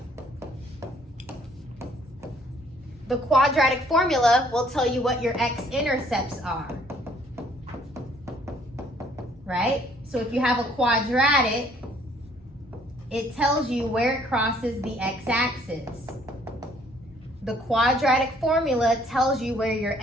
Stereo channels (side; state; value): both; normal; correlation 0.62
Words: The quadratic formula will tell you what your x-intercepts are, right? So if you have a quadratic, it tells you where it crosses the x-axis. The quadratic formula tells you where your